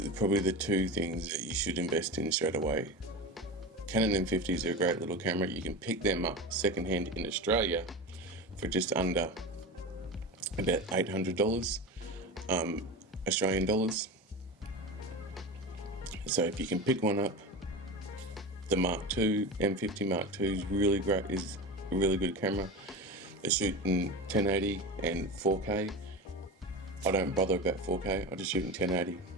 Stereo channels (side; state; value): both; normal; correlation 0.26